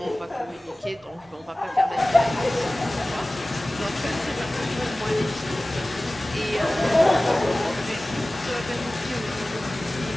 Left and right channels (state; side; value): normal; both; correlation 0.98